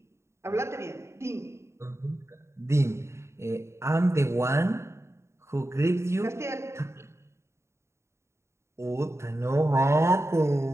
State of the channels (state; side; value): late; left; 0.13 ms